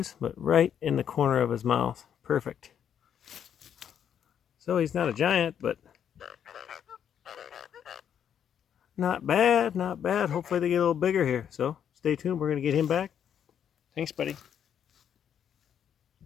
but right in the corner of his mouth. Perfect. So he's not a giant, but not bad, not bad. Hopefully they get a little bigger here. So stay tuned. We're going to get him back. Thanks, buddy.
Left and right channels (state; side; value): quieter; right; 8.8 dB